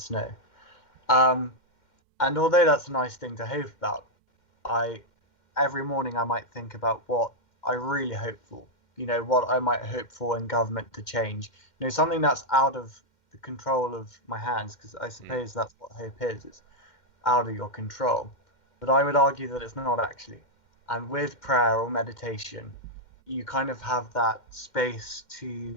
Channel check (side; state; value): right; late; 2.1 ms